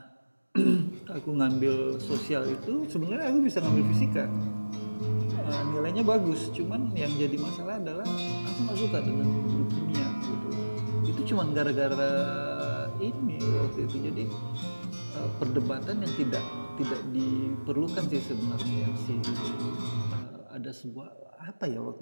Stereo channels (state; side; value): inverted; both; correlation -1.00